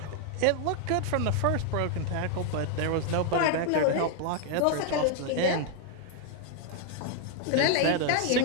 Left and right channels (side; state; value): both; different; correlation 0.00